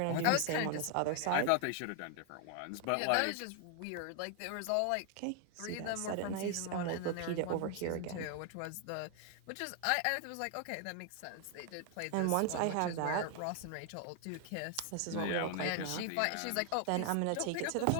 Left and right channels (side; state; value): both; different; correlation 0.00